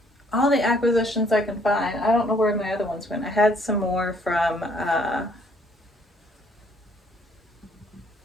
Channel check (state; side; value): normal; both; correlation 0.64